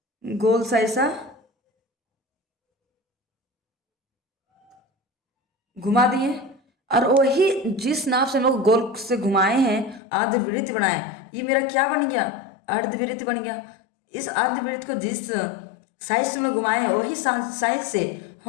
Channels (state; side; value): drops out; right; at 10.0 s